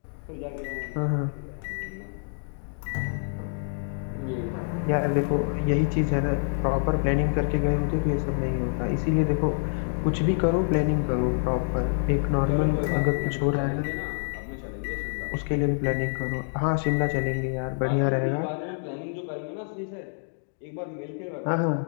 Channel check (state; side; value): silent; right; digital silence